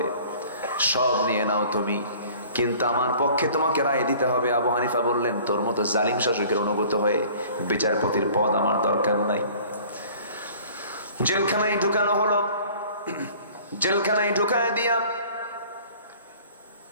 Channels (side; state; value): both; inverted; correlation -0.50